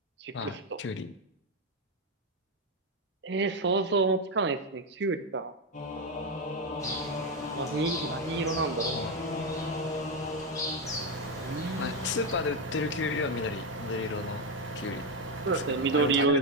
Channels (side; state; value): both; normal; correlation 0.07